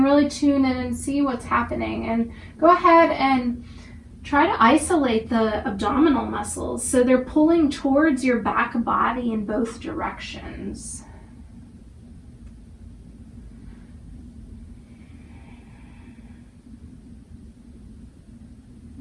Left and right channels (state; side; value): identical; both; correlation 1.00